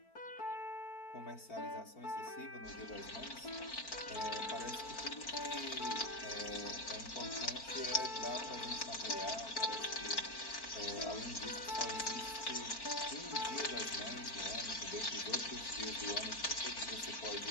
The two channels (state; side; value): late; right; 4.4 ms